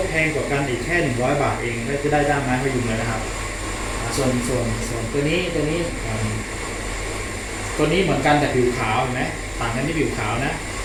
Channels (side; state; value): both; identical; correlation 1.00